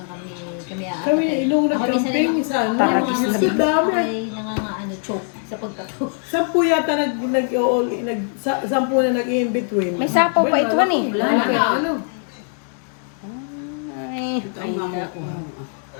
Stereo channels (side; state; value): right; silent; 56 dB below the other